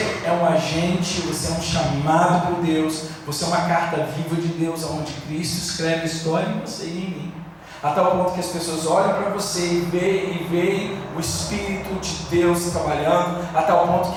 é um agente, você é um chamado por Deus, você é uma carta viva de Deus, onde Cristo escreve a história em você e em mim, a tal ponto que as pessoas olham para você e veem o Espírito de Deus trabalhando, a tal ponto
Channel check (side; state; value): both; identical; correlation 1.00